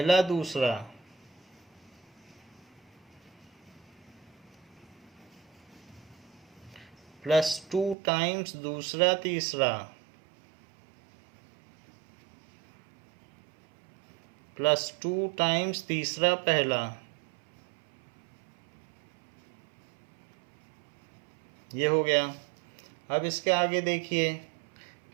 दूसरा, प्लस 2 टाइम्स दूसरा तीसरा, प्लस 2 टाइम्स तीसरा पहला, ये हो गया। अब इसके आगे देखिए,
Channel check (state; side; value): drops out; left; at 8.0 s